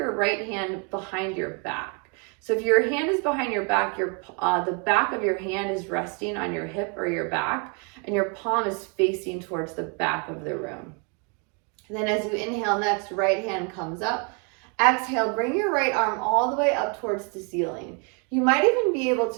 right hand behind your back. So if your hand is behind your back, the back of your hand is resting on your hip or your back, and your palm is facing towards the back of the room. And then as you inhale next, right hand comes up. Exhale, bring your right arm all the way up towards the ceiling. You might even be able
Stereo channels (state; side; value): quieter; left; 36.0 dB